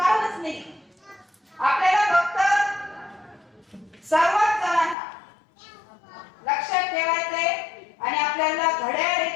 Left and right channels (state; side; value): drops out; right; at 5.0 s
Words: नाही. आपल्याला फक्त सर्वच जणांना लक्षात ठेवायचंय आणि आपल्याला घड्याळ हे